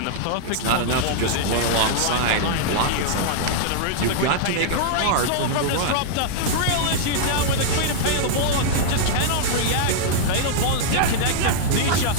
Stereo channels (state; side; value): different; both; correlation -0.01